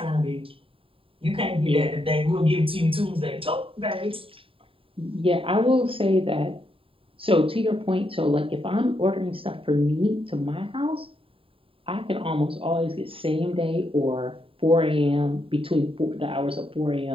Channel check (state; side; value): late; left; 0.27 ms